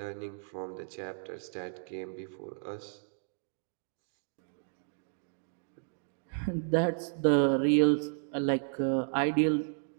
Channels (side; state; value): left; silent; digital silence